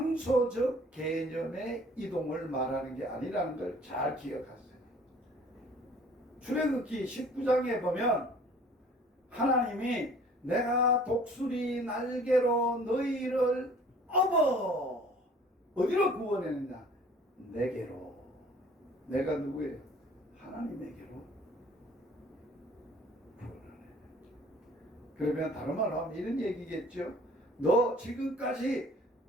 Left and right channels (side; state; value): both; normal; correlation 0.52